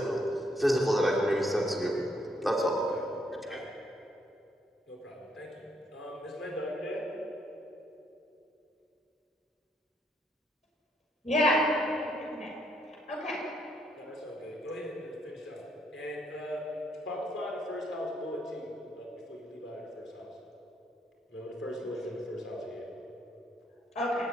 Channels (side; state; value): both; normal; correlation 0.72